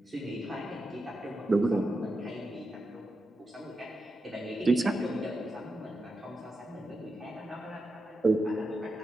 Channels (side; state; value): both; normal; correlation 0.88